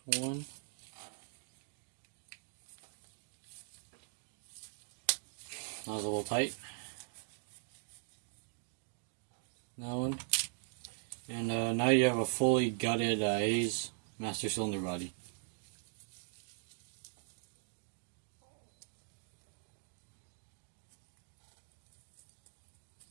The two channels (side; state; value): left; silent; digital silence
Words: This one. That was a little tight. That one. And now you have a fully gutted Hayes master cylinder body.